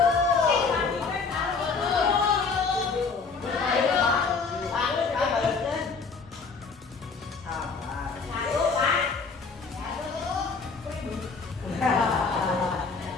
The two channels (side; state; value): right; quieter; 4.8 dB